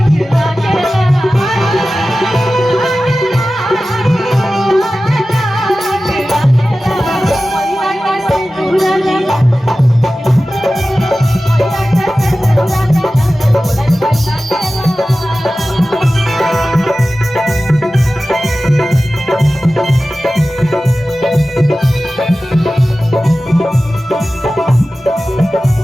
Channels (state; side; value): normal; both; correlation 0.95